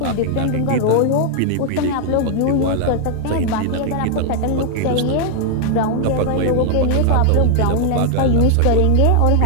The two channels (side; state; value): both; different; correlation 0.00